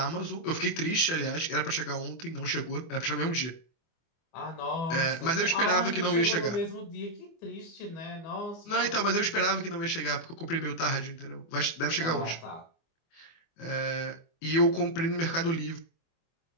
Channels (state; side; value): late; right; 24 ms